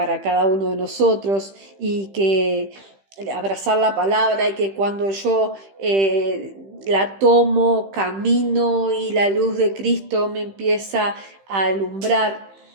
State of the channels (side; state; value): left; late; 15 ms